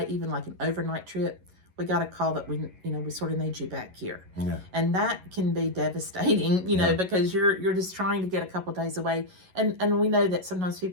even like an overnight trip, we got a call that we sort of need you back here. Yeah. And that can be devastating, because you're just trying to get a couple days away. And we know that sometimes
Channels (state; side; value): late; left; 11 ms